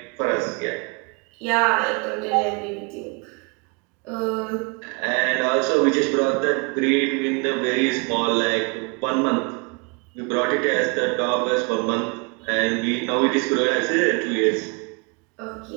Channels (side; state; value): left; quieter; 32.8 dB